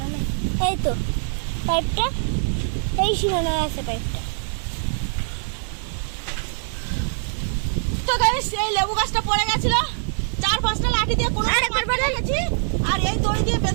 না, এই তো পাইপটা এই সীমানায় আছে পাইপটা। তো গাইস এই লেবু গাছটা পড়ে গেছিল, 4-5টা লাঠি দিয়ে কোনো রেখেছি আর এই দড়ি দিয়ে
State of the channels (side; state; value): left; silent; digital silence